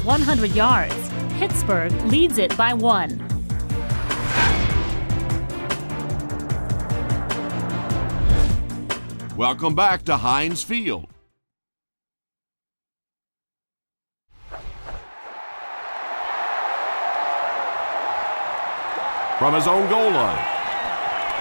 yards. Pittsburgh leads it by 1. Welcome back to Heinz Field. From his own goal line.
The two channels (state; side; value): inverted; both; correlation -1.00